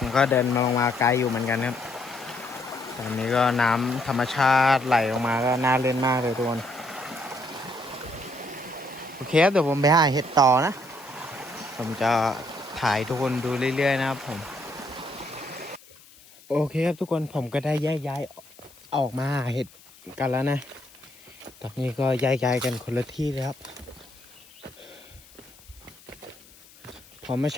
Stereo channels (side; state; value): left; noise; hiss, 24 dB below the sound